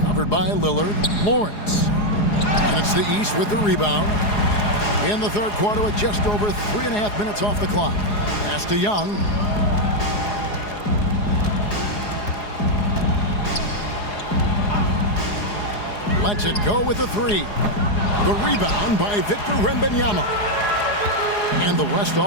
Covered by Lillard. Lawrence. And it's the East with the rebound. In the third quarter with just over 3.5 minutes off the clock. Pass to Young. Lets it go with the 3. The rebound by Victor Wembanyama. And the West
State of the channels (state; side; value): late; right; 4.8 ms